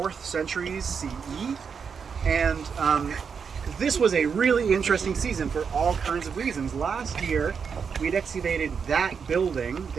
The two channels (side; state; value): left; quieter; 6.3 dB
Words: centuries CE. And this was a really interesting season for all kinds of reasons. Last year, we'd excavated that building